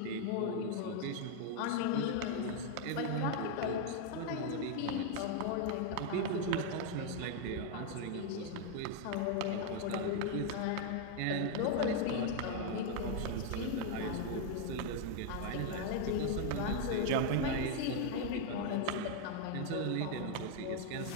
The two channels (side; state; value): both; different; correlation 0.00